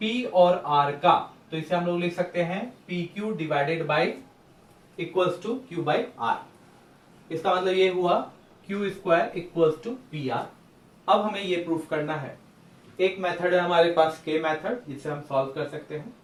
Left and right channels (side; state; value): both; identical; correlation 1.00